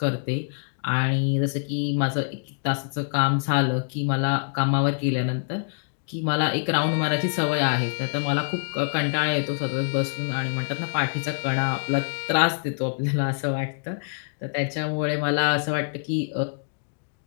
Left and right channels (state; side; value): silent; right; digital silence